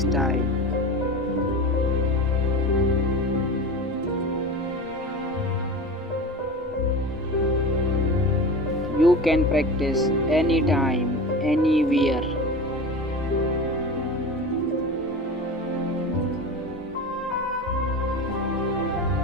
You can practice anytime, anywhere.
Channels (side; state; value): both; normal; correlation 0.30